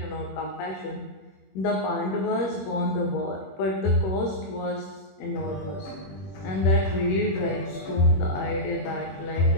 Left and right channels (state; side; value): late; right; 21 ms